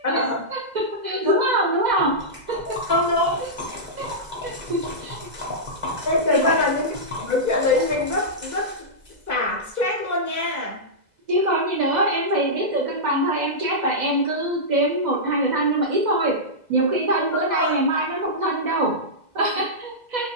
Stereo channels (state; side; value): late; left; 2.0 ms